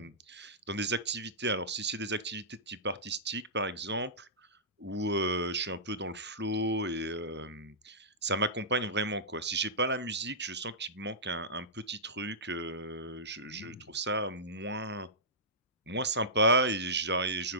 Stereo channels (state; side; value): normal; both; correlation -0.18